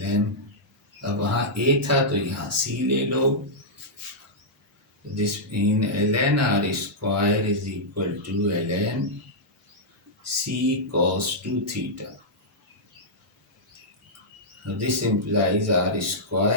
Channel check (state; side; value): normal; both; correlation -0.09